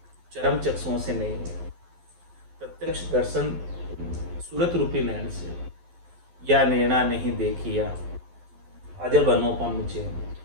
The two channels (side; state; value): left; late; 11 ms